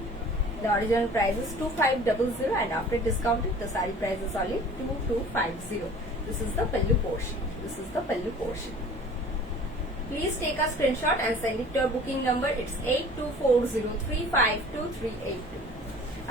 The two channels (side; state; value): both; normal; correlation 0.46